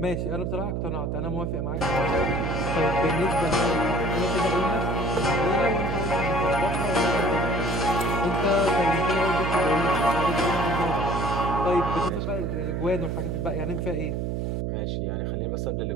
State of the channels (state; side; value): noise; right; hum, 1 dB below the sound